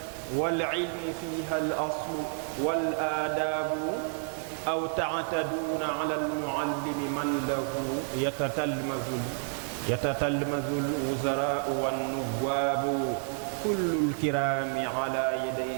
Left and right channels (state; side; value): silent; left; 58 dB below the other